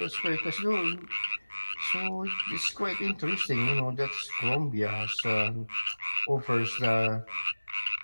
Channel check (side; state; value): both; inverted; correlation -1.00